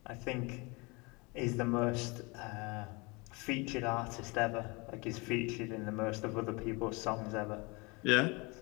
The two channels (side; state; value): right; quieter; 27.5 dB